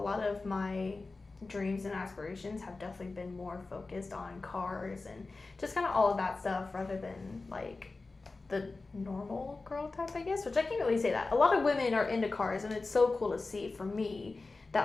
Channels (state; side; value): quieter; right; 3.6 dB